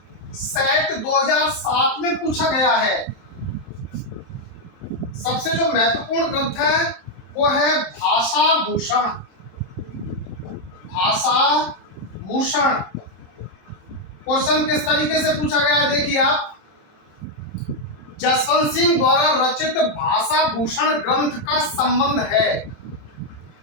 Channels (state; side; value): late; right; 28 ms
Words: सेट 2007 में पूछा गया है, सबसे जो महत्वपूर्ण ग्रंथ है वो है भाषा भूषण, भाषा भूषण। क्वेश्चन किस तरीके से पूछा गया है देखिए आप, जसवंत सिंह द्वारा रचित भाषा भूषण ग्रंथ का संबंध है।